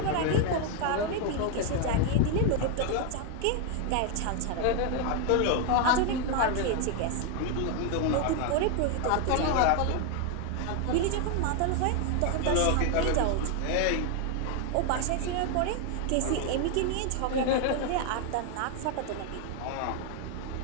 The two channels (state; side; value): different; both; correlation 0.01